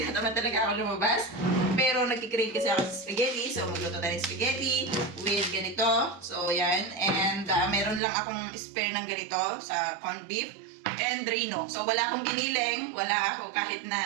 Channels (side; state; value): left; drops out; at 8.0 s